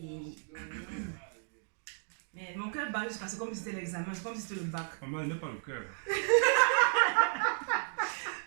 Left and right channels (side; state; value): left; silent; 55 dB below the other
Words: Mais mon cœur bat juste parce que comme si c'était l'examen, c'est comme si c'était le bac. Maman, elle n'a pas le cœur.